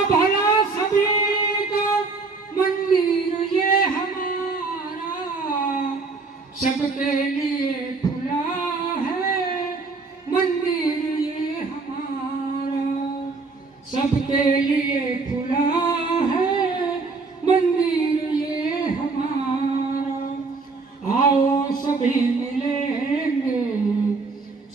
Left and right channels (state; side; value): quieter; left; 4.1 dB